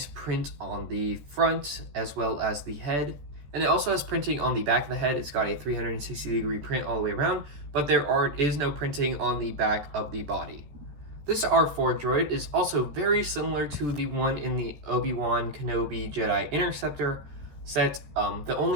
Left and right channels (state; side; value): late; left; 14 ms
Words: print on the front as well as the head, and it also has printing on the back of the head. It's got a 360-degree print all the way around, but there is no printing on the back of the body. This R4 droid is also very similar to the one in the Obi-Wan Kenobi Jedi Interceptor set, the